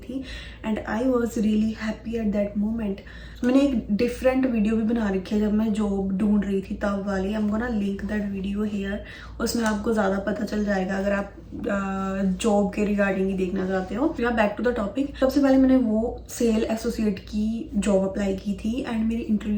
and I was really happy at that moment. मैंने एक डिफरेंट वीडियो भी बना रखी है जब मैं जॉब ढूंढ रही थी तब वाली। आई am gonna link that video hair, उसमें आपको ज़्यादा पता चल जाएगा अगर आप जॉब के रिगार्डिंग ही देखना चाहते हो। या बैक टू द टॉपिक, सबसे पहले मैंने वो सेल एसोसिएट की जॉब अप्लाई की थी एंड मेरी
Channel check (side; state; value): both; identical; correlation 1.00